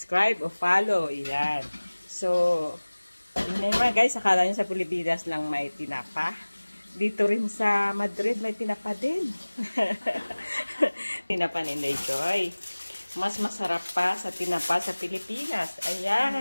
o follow. Ayan. So, yun mga guys, akala nyo sa Pilipinas lang may tinapa. Dito rin sa Madrid may tinapa din. Tinapa ni Inday Joy. Mas masarap pa sa tinapa sa Pilipinas.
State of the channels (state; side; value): inverted; both; correlation -1.00